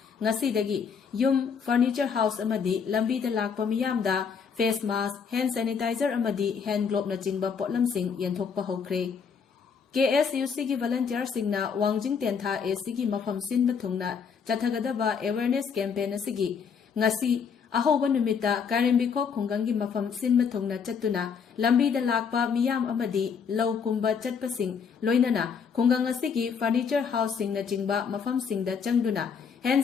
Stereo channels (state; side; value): quieter; right; 6.4 dB